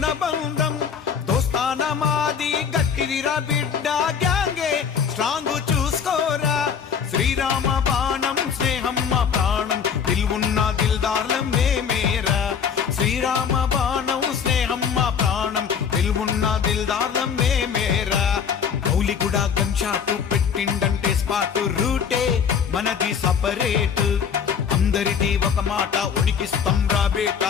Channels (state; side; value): quieter; right; 7.0 dB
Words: బంధం దోస్తాన మాది గట్టిదిరా బిడ్డ గ్యాంగే స్ట్రాంగ్ చూసుకోరా శ్రీరామ బాణం స్నేహం మా ప్రాణం దిల్వున్న దిల్దార్లం మేమేరా శ్రీరామ బాణం స్నేహం మా ప్రాణం దిల్వున్న దిల్దార్లం మేమేరా గౌలిగూడ గన్ షాటు పెట్టిండంటే స్పాటు రూటే మనది సపరేట్ అందరిది ఒక మాట ఉనికిస్తాం రా